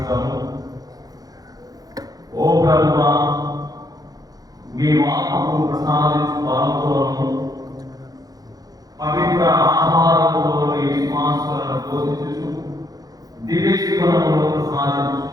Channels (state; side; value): late; left; 0.18 ms